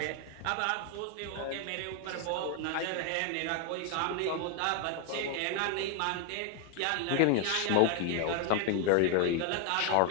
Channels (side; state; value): both; different; correlation 0.01